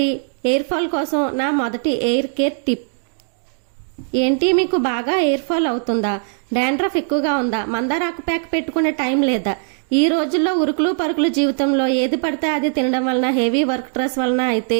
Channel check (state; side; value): silent; left; digital silence